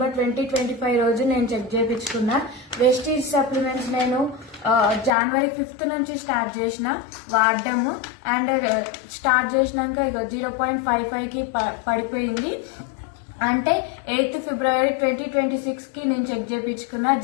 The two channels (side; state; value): right; drops out; at 5.1 s